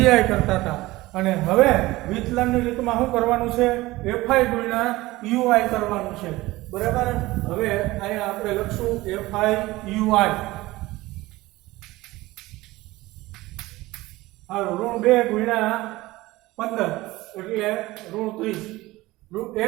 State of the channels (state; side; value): quieter; left; 19.0 dB